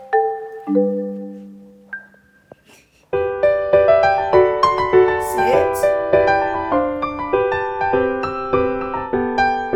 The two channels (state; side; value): identical; both; correlation 1.00